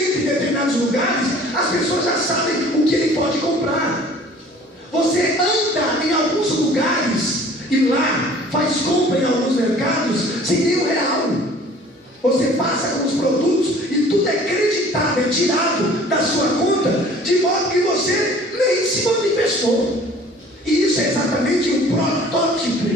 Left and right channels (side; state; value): both; normal; correlation 0.50